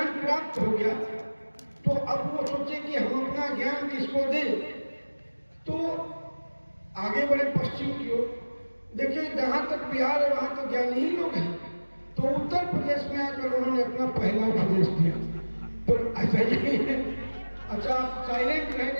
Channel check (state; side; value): inverted; both; correlation -1.00